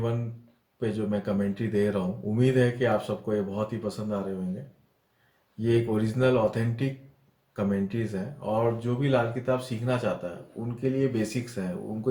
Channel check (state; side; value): identical; both; correlation 1.00